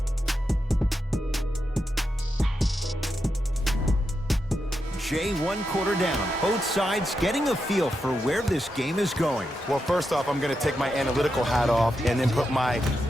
Jay, 1 quarter down. Both sides getting a feel for where this game is going. Well, first off, I'm going to take my analytical hat off and then put my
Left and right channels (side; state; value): both; normal; correlation 0.86